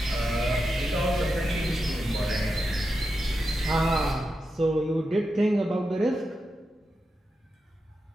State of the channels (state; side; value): normal; both; correlation 0.88